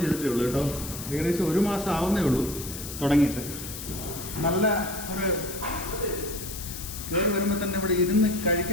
ചെയ്തിട്ടേ ഉള്ളൂ കേട്ടോ. ഏകദേശം 1 മാസം ആവുന്നേ ഉള്ളൂ തുടങ്ങിയിട്ട്. നല്ല ഒരു കയറി വരുമ്പോൾ തന്നെ ഇവിടെ ഇരുന്ന്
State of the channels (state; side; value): noise; left; hiss, 9 dB below the sound